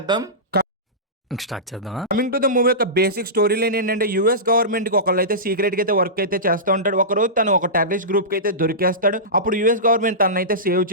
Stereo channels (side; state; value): both; normal; correlation -0.18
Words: కమింగ్ టు ద మూవీ యొక్క బేసిక్ స్టోరీ లైన్ ఏంటంటే, యూఎస్ గవర్నమెంట్ కి ఒకళ్ళు అయితే సీక్రెట్ గా అయితే వర్క్ అయితే చేస్తూ ఉంటాడు. ఒక రోజు తను ఒక టెర్రరిస్ట్ గ్రూప్ కి అయితే దొరికేస్తాడు. అప్పుడు యూఎస్ గవర్నమెంట్ తనను అయితే సేవ్